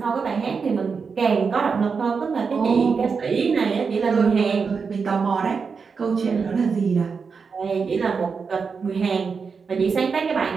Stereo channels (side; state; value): left; quieter; 5.4 dB